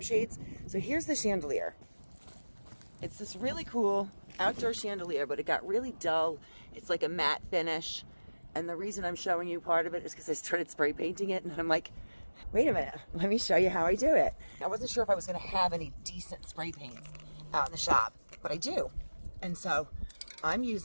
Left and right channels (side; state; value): both; inverted; correlation -1.00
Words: So here's the chandelier. It's this really cool outdoor chandelier, but it got really dull. It's like a matte finish. And the reason I'm showing you part of it is because I started spray painting it, and I'm like, wait a minute, let me show you how I do it. I wasn't sure if I was gonna have any decent spray paints out in the shop, but I do. And so I'm